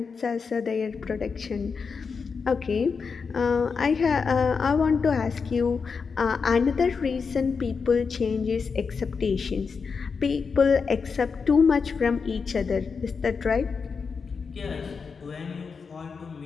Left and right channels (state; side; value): quieter; right; 5.4 dB